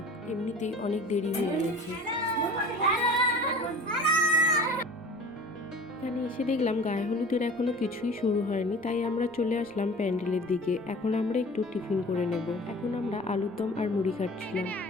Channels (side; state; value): right; noise; rumble, 29 dB below the sound